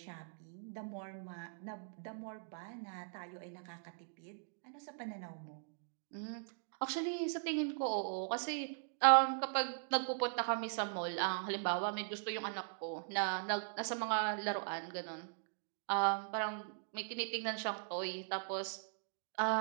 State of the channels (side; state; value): left; silent; digital silence